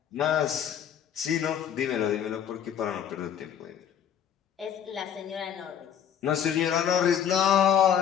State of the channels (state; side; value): quieter; right; 9.1 dB